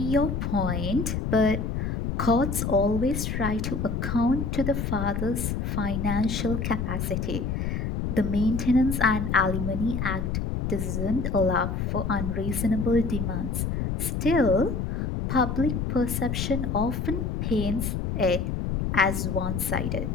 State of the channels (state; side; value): noise; left; rumble, 1 dB below the sound